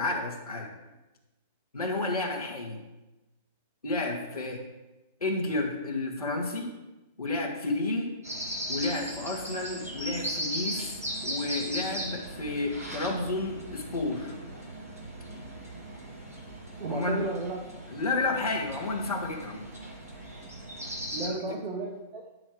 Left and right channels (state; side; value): inverted; both; correlation -0.34